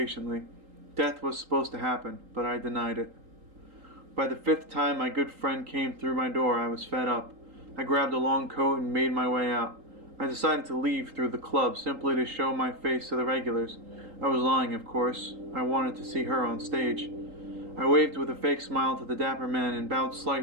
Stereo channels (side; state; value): left; late; 3.8 ms